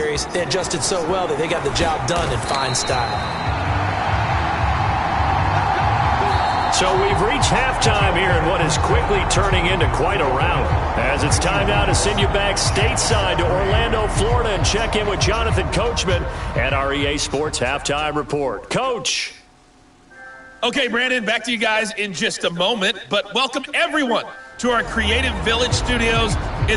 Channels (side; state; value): both; identical; correlation 1.00